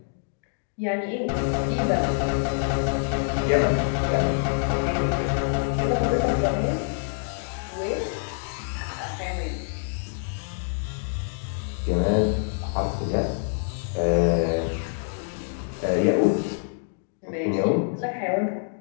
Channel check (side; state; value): right; silent; digital silence